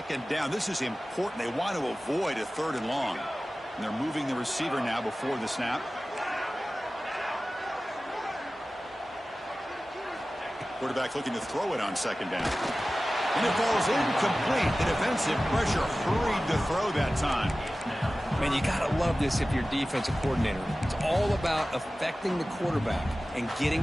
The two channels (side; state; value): both; normal; correlation 0.96